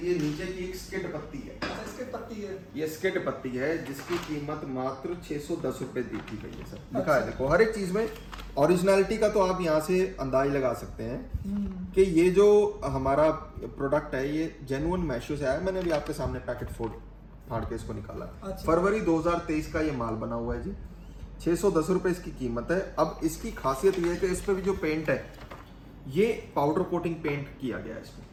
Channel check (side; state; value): both; identical; correlation 1.00